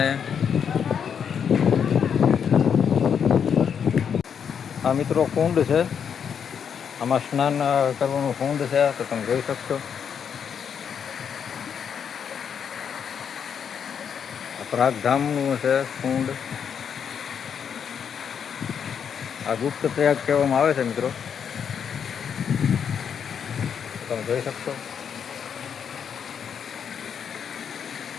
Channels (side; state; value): right; quieter; 7.5 dB